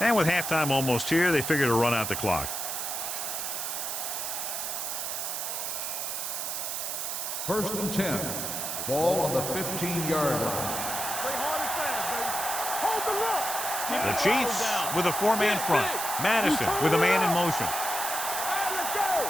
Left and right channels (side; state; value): right; noise; hiss, 3 dB below the sound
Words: And with halftime almost here, they figure to run out the clock. First and 10. Ball on the 15-yard line. Play hard and fast, baby. Hold the look. The Chiefs with a 4-man front. Madison with a man in motion. All right, let's go.